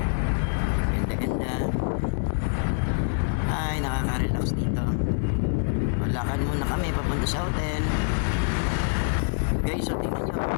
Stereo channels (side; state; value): right; silent; digital silence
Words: Ganda-ganda. Ay, nakaka-relax dito. Lakad muna kami papunta sa hotel. Guys, so tingnan nyo.